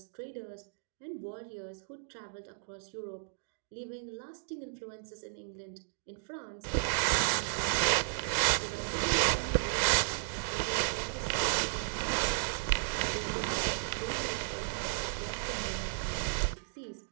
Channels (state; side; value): silent; left; digital silence